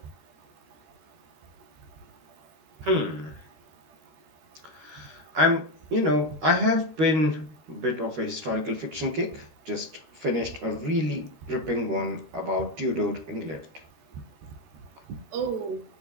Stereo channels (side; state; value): left; late; 13 ms